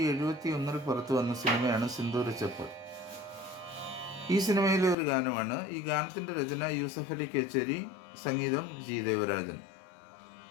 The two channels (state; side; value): drops out; right; at 5.0 s